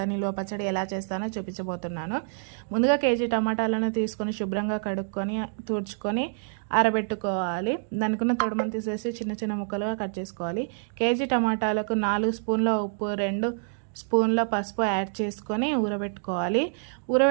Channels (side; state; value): left; silent; digital silence